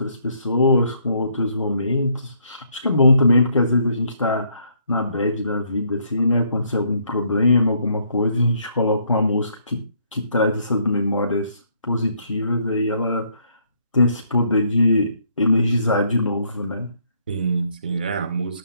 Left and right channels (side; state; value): both; inverted; correlation -0.69